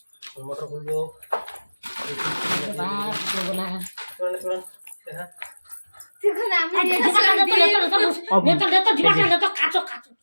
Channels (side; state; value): both; inverted; correlation -1.00